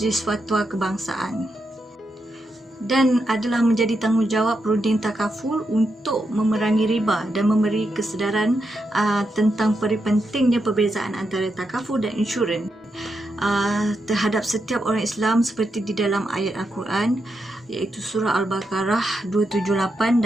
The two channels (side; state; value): both; normal; correlation 0.84